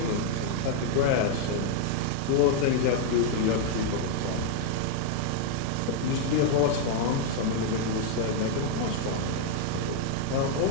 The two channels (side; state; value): both; different; correlation 0.00